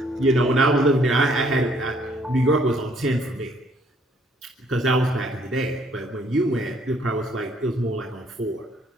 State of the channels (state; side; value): normal; both; correlation 0.65